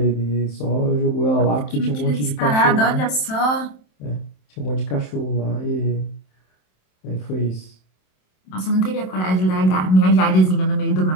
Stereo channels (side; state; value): right; late; 27 ms